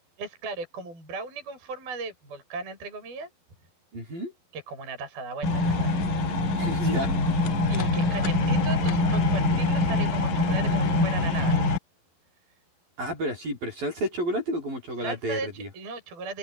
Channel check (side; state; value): left; late; 11 ms